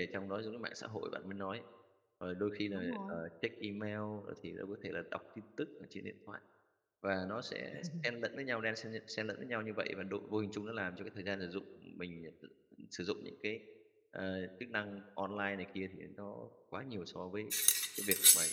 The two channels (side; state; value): both; identical; correlation 1.00